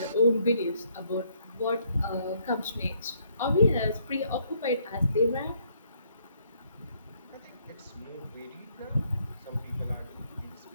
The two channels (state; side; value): inverted; both; correlation -0.70